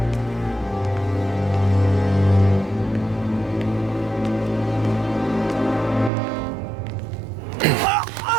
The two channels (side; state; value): left; drops out; at 6.1 s